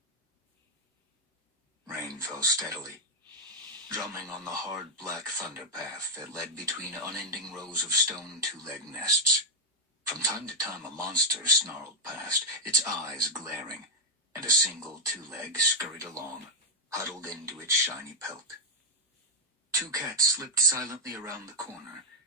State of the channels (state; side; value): normal; both; correlation 0.00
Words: Rain fell steadily, drumming on the hard black thunder path that led between unending rows of stone two-leg nests. From time to time a monster snarled past, its eyes glaring, and a single two-leg scurried along, huddled into its shiny pelt. Two cats slipped silently around the corner,